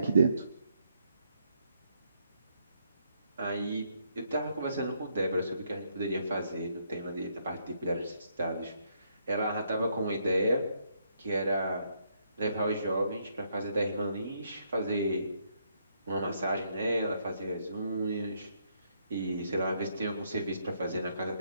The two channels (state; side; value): inverted; both; correlation -0.73